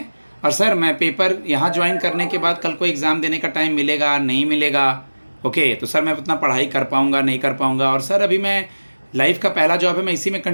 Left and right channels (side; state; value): both; inverted; correlation -1.00